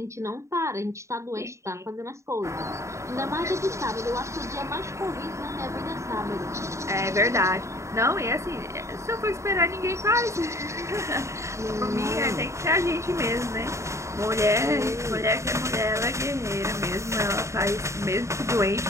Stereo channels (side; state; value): left; late; 0.14 ms